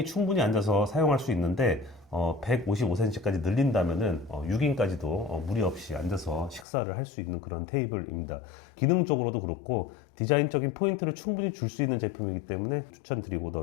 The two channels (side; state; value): right; drops out; at 6.7 s